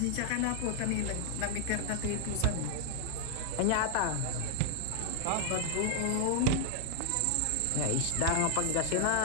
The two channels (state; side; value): different; both; correlation 0.00